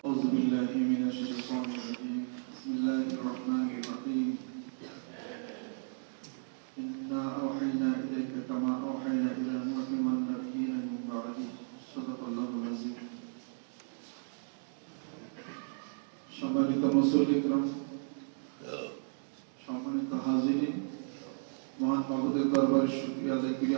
أعوذ بالله من الشيطان الرجيم بسم الله الرحمن الرحيم إنا أوحينا إليك كما أوحينا إلى نوح والنبيين من بعده صدق الله العظيم সম্মানিত মুসল্লিকরাম সম্মানিত হাজিরিন মহান মাবুদের দরবারে শুকরিয়া আদায় করি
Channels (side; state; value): left; silent; digital silence